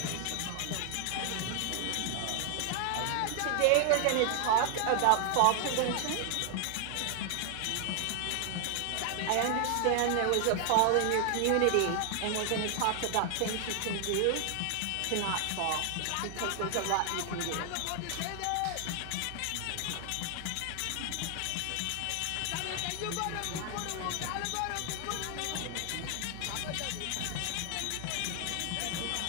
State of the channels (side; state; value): both; different; correlation 0.00